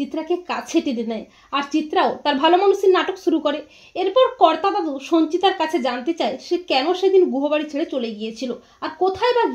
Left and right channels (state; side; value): identical; both; correlation 1.00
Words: কাছে টেনে নেয়, আর চিত্রাও তার ভালো মানুষের নাটক শুরু করে। এরপর কর্তা দাদু সঞ্চিতার কাছে জানতে চায় সে কেন সেদিন গুহবাড়ি ছেড়ে চলে গিয়েছিল আর কোথায় বা